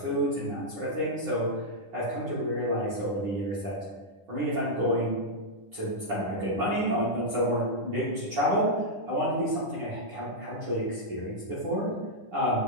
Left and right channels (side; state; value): left; late; 9.9 ms